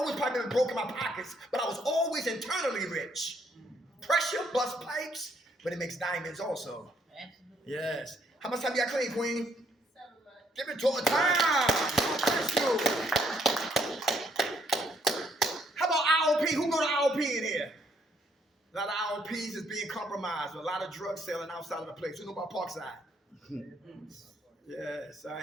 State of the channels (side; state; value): both; normal; correlation 0.69